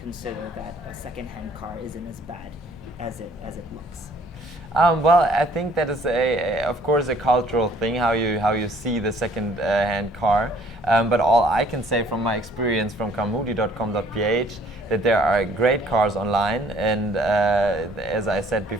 that a second-hand car isn't as bad as it looks. Well, I think that is of course, a cultural thing how you see the second-hand car. But all I can say from my experience from carmudi.com.ph that there are great cars online, and as I said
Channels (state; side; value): normal; both; correlation 0.59